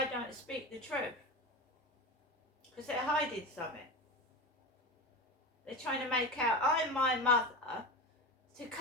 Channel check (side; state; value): both; normal; correlation 0.25